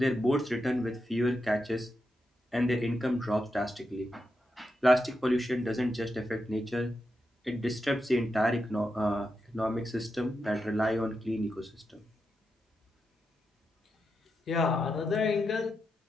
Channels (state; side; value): normal; both; correlation 0.86